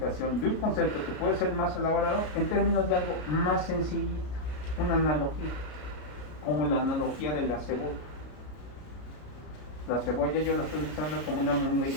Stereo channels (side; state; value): right; late; 33 ms